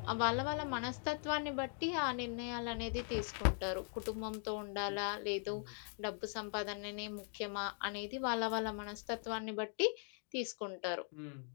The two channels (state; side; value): silent; right; 51 dB below the other